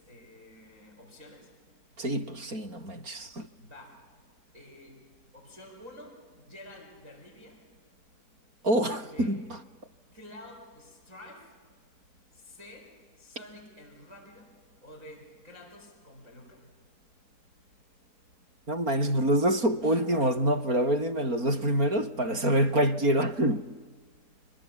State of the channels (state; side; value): late; left; 4.3 ms